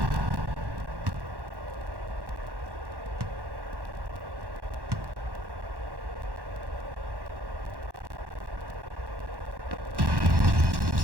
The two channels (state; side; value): late; left; 1.1 ms